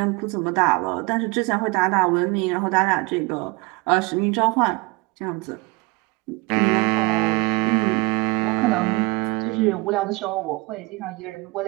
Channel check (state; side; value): quieter; left; 25.0 dB